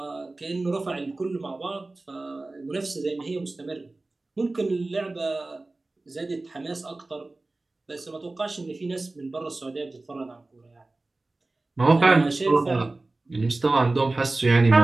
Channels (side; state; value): left; quieter; 3.1 dB